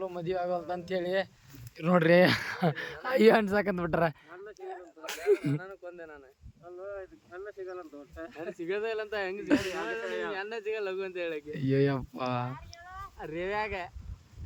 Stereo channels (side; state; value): both; identical; correlation 1.00